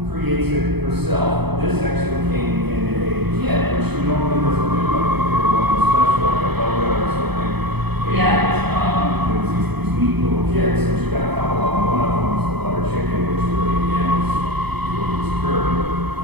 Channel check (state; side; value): late; left; 0.98 ms